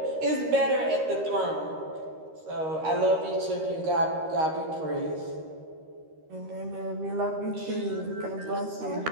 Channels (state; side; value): late; left; 13 ms